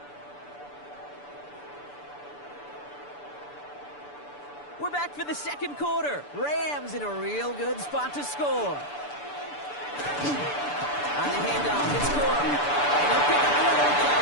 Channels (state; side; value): late; right; 6.9 ms